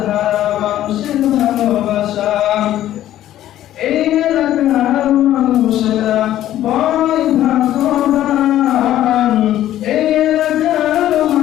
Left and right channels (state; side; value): quieter; right; 12.8 dB